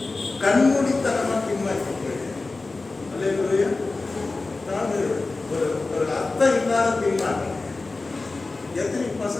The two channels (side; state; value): right; quieter; 3.5 dB